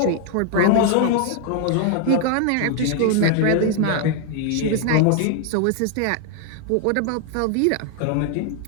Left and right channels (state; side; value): different; both; correlation 0.01